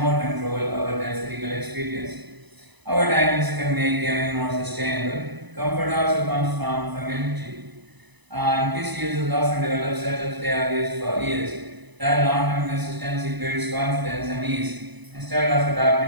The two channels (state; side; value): late; left; 1.0 ms